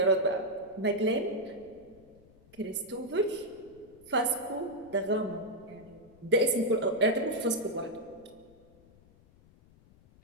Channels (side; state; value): left; noise; rumble, 26 dB below the sound